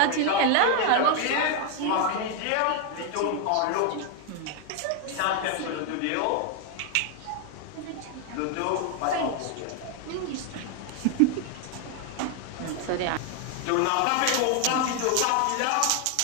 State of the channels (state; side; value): different; both; correlation 0.00